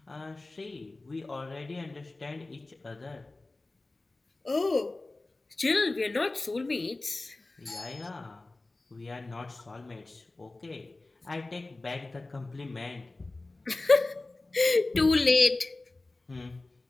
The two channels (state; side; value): quieter; right; 3.1 dB